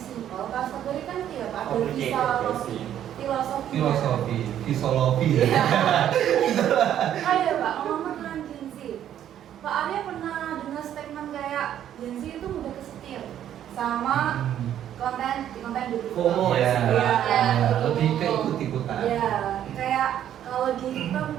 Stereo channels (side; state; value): left; quieter; 10.7 dB